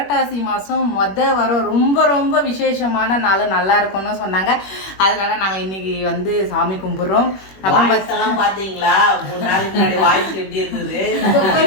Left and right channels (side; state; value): right; late; 21 ms